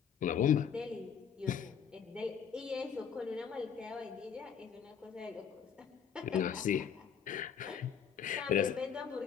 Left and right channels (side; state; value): right; quieter; 7.7 dB